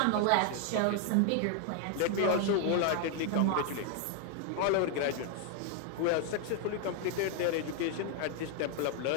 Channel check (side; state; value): both; different; correlation 0.00